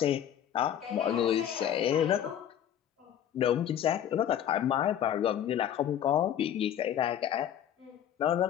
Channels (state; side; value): quieter; right; 10.1 dB